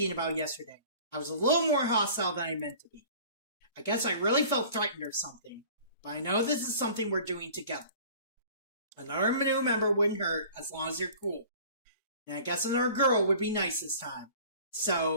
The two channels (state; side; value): inverted; both; correlation -0.46